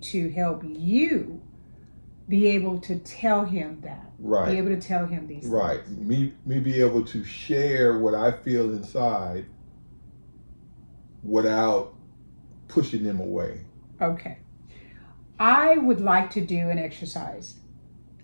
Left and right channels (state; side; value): inverted; both; correlation -1.00